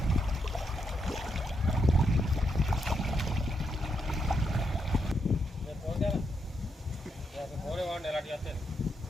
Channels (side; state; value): both; normal; correlation 0.80